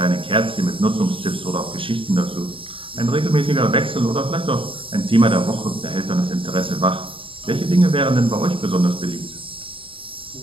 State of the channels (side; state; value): left; late; 0.25 ms